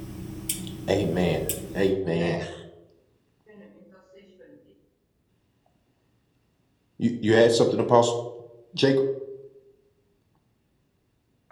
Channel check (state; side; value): identical; both; correlation 1.00